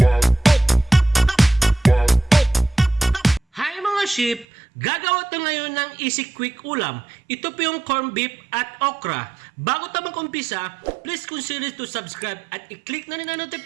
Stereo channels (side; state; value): left; drops out; at 4.5 s